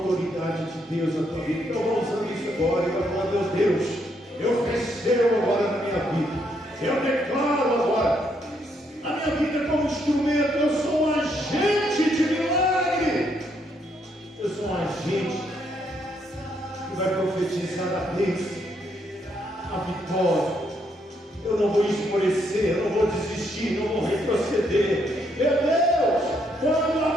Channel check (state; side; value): normal; both; correlation 0.74